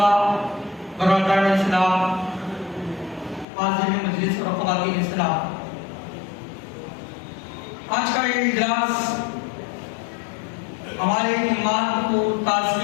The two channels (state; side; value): drops out; right; at 3.5 s